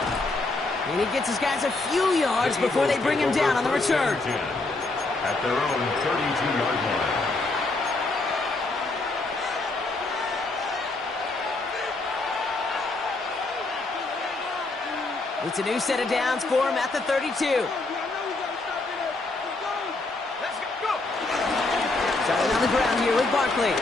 And he gets his guys a few yards before they bring him down on the return. At their own 32-yard line. It's a new set of downs for him at the 32. Starting on the ground here with Barkley.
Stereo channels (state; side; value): quieter; right; 3.2 dB